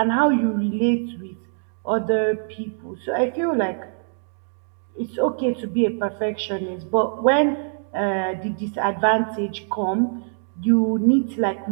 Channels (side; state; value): left; silent; 63 dB below the other